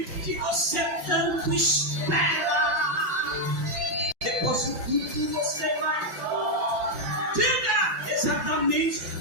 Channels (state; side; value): late; left; 5.9 ms